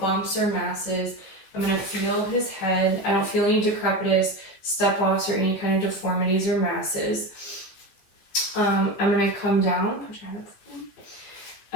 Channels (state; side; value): late; right; 16 ms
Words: or masses. I'm going to feel his head. I don't feel any decrepitous, step-offs, or any kind of deformities or masses. I'm going to come down,